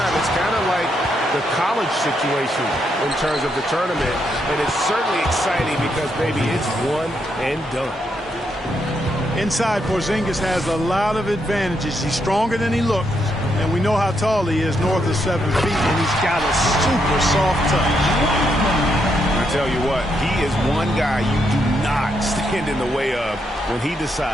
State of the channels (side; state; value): both; normal; correlation 0.79